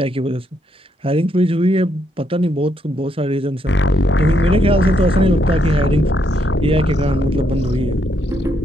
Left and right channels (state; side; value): normal; both; correlation 0.76